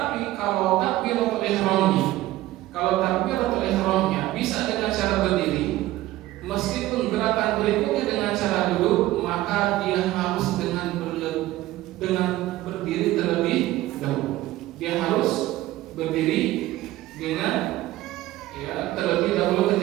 kalau takbiratul ihramnya bisa dengan cara berdiri, meskipun gerakan berikutnya dengan cara duduk, maka dia harus dengan berdiri terlebih dahulu. Dia harus berdiri dengan terlebih dahulu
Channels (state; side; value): quieter; left; 16.2 dB